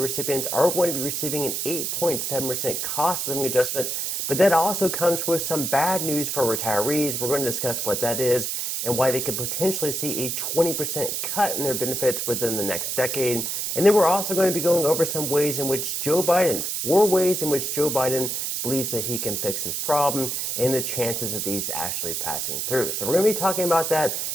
are going to be receiving an 8.7% cost of living adjustment, but that also comes with some bad news for retirees. We're going to discuss what that is and why they could potentially see a 20% cut in their benefits within the next decade. And then we're also going to be going over some ways in which Joe Biden, 4 ways in which Joe Biden believes that he can fix this problem and the chances of these actually passing through. So we're going to be talking about that.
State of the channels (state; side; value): noise; right; hiss, 2 dB below the sound